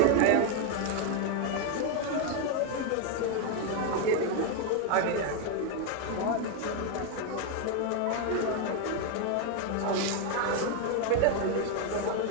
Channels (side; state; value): both; different; correlation 0.01